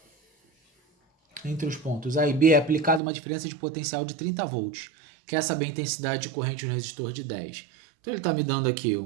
é aplicada uma diferença de potencial de 30 volts. Quer saber a intensidade de corrente no resistor de 10. Então ele está me dando aqui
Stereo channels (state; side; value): drops out; left; at 3.0 s